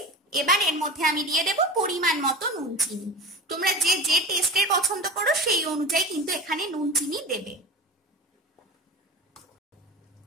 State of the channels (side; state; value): both; normal; correlation 0.31